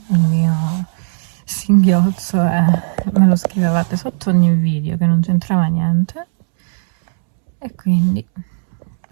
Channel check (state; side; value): silent; left; 69 dB below the other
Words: il mio singhiozzo e me lo scrivevate sotto ogni video che non c'entrava niente, e quindi